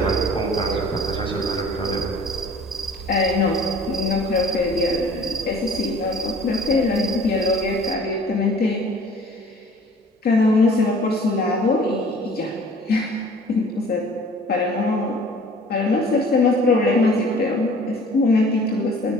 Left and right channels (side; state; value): both; normal; correlation 0.50